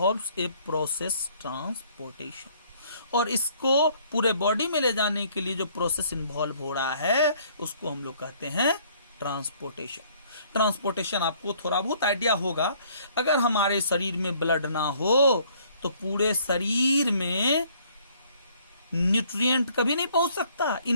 a process transportation. और इसको पूरे बॉडी में ले जाने के लिए जो प्रोसेस इन्वॉल्व हो रहा है उसको हम लोग कहते हैं ट्रांसपोर्टेशन। ट्रांसपोर्टेशन आपको थोड़ा बहुत आइडिया होगा। अगर हमारे शरीर में ब्लड ना हो तो पूरे शरीर में न्यूट्रिएंट कभी नहीं पहुंच सकता,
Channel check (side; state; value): both; inverted; correlation -0.61